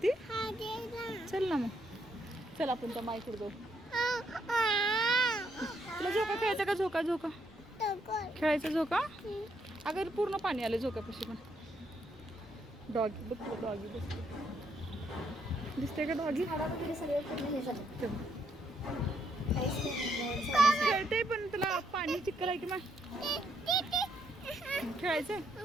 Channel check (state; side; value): normal; both; correlation 0.75